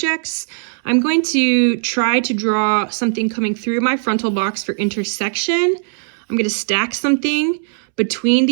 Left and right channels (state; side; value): silent; left; 67 dB below the other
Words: I'm going to try to draw something coming through my frontal box for intersection. I'm going to stack something between